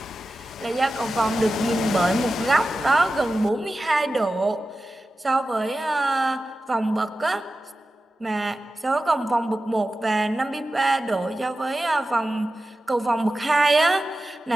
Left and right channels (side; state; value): both; normal; correlation 0.93